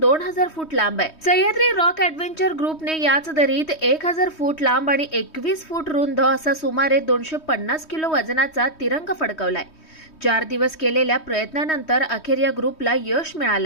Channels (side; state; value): right; late; 3.2 ms